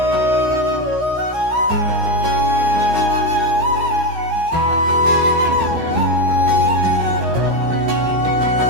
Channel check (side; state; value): left; late; 15 ms